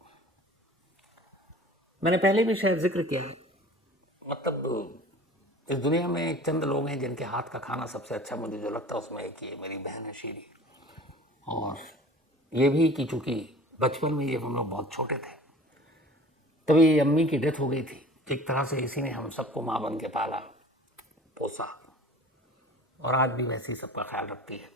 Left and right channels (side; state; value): both; normal; correlation 0.43